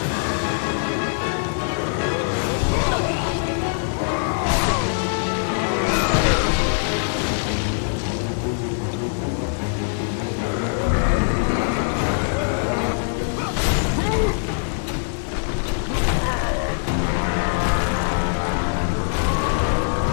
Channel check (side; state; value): right; silent; digital silence